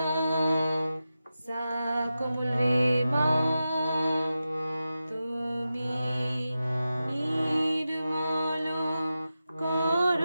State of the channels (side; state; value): both; inverted; correlation -0.92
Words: সা কোমল রে মা তুমি নির্মল